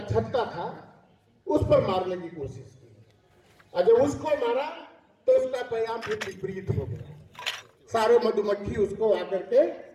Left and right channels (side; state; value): both; identical; correlation 1.00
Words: छत्ता था उस पर मारने की कोशिश की, और जब उसको मारा तो उसका परिणाम फिर विपरीत हो गया। सारे मधुमक्खी उसको आकर के